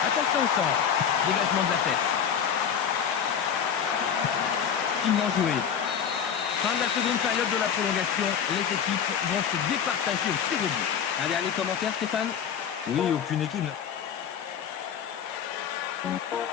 Attention au centre. Dégagement de la tête. Finement joué. Fin de la seconde période de la prolongation. Les équipes vont se départager au tir au but. Un dernier commentaire, Stéphane? Oui, aucune équipe.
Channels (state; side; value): quieter; right; 7.9 dB